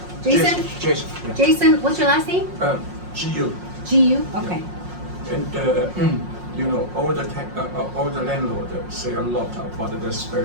Jason? Jason. Jason, what's your last name? GU. GU, okay. And you know, all the landlord say a lot about the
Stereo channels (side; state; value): left; late; 5.6 ms